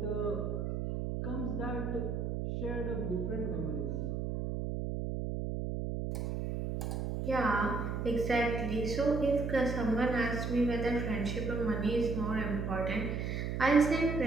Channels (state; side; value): noise; right; hum, 2 dB below the sound